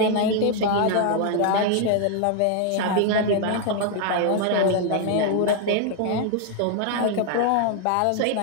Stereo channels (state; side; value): different; both; correlation 0.00